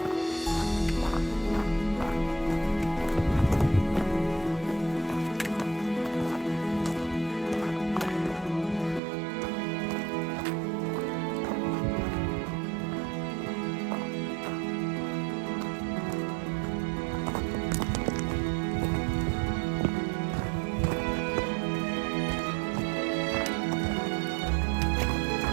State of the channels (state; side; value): drops out; left; at 9.0 s